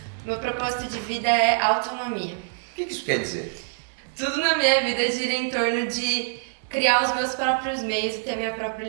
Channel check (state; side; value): silent; left; digital silence